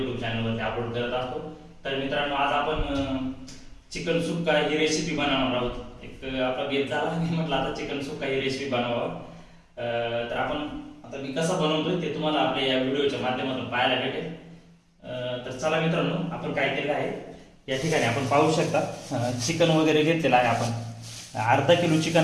चॅनल वरती अपलोड करत असतो. तर मित्रांनो, आज आपण चिकन सुक्का ही रेसिपी बनवणार आहोत. एक आपला बेत झाला आणि म्हटलं आता चिकन सुक्का ही रेसिपी बनवावं. तर आपण आता मी कसं बनवतोय ते तुम्हाला आपल्या या व्हिडिओच्या माध्यमातून पाहायला भेटेल. तर चला मित्रांनो, आपण काय केलं आहे या ठिकाणी आपण पाहू शकता. चिकन वगैरे घेतलेलं आहे आपण. अर्धा किलो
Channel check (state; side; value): identical; both; correlation 1.00